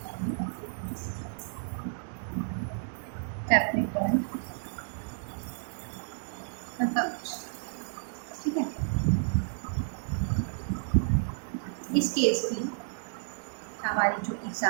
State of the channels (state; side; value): silent; left; digital silence